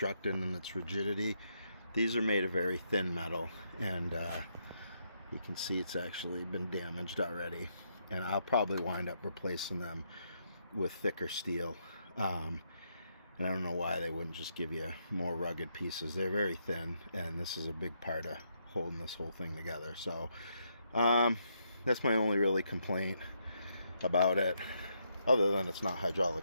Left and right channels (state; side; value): inverted; both; correlation -0.78